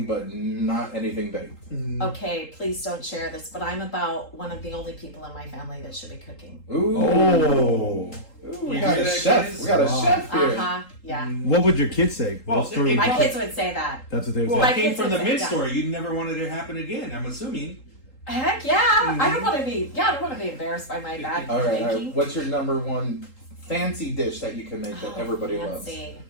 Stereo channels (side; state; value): right; late; 3.8 ms